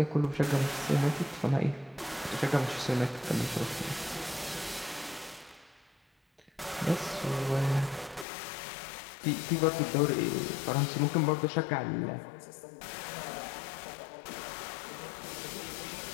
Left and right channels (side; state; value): right; drops out; at 8.2 s